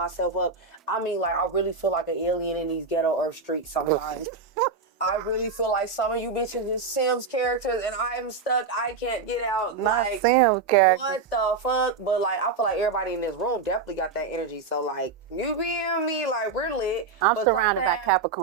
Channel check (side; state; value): left; quieter; 4.7 dB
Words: up. I mean, like, I really feel like an alien in these ghetto earth streets sometimes. I really feel like some of you bitches is Sims characters and I'm stuck. I can't get out. Like, Sims characters. What the fuck? But like, I feel like everybody in this room definitely got that energy. So like, you being me, like, we're lit. I'm surrounded by